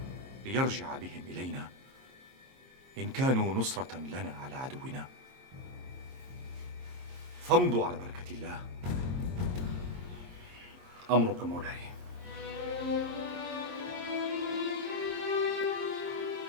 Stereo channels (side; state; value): left; late; 22 ms